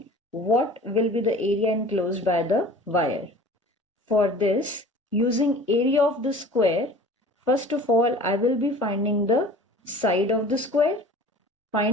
what will be the area enclosed by the wire. For this, using area of the square, first of all, I will be finding the side of the square.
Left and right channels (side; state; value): both; normal; correlation 0.44